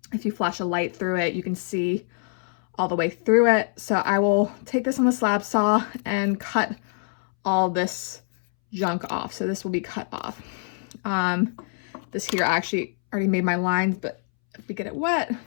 If you flash a light through it, you can see all the way through it. So I will take this on the slab saw and cut all this junk off. So this will be cut off. This here, I actually already made my lines, but if we get it wet,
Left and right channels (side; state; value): right; silent; 62 dB below the other